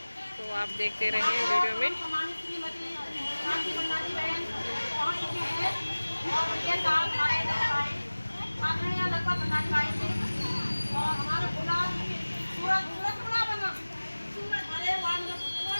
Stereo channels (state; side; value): inverted; both; correlation -1.00